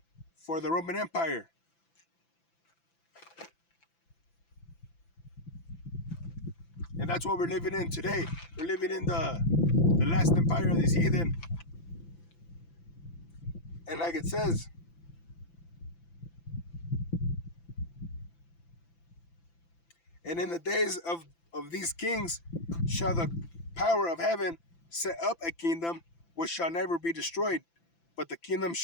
for the Roman Empire. And that's what we're living in today. We're living in the last empire of this heathen. And like it says, and in the days of these kings shall the power of heaven set up a kingdom which shall never be destroyed, but the kingdom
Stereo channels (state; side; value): late; right; 5.9 ms